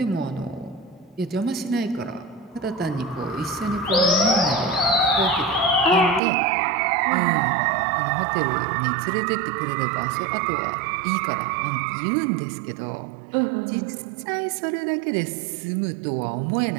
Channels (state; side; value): drops out; left; at 6.2 s